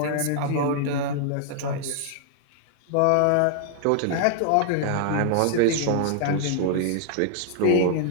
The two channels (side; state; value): both; different; correlation -0.01